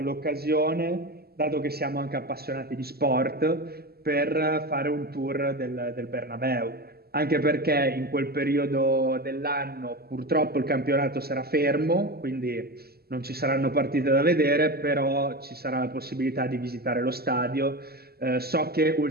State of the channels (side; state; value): left; late; 0.46 ms